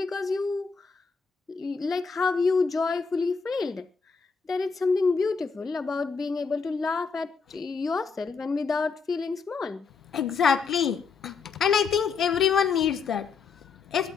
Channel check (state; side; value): quieter; right; 5.2 dB